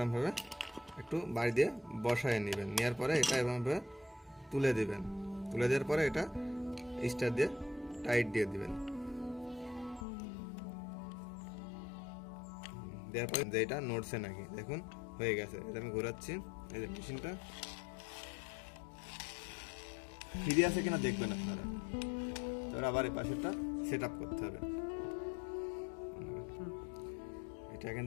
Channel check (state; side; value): drops out; right; at 10.1 s